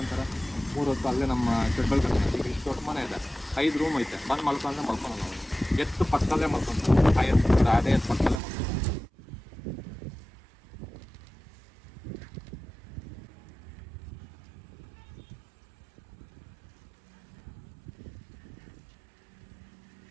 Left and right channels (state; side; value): drops out; left; at 8.4 s